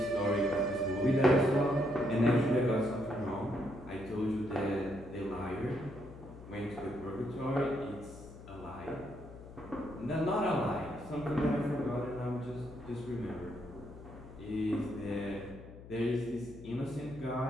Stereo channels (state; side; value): noise; left; hum, 16 dB below the sound